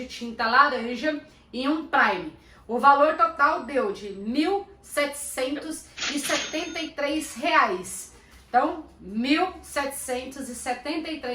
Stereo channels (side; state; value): both; identical; correlation 1.00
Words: tinta laranja e um prime. O valor total deu de R$ 1.773. Então, R$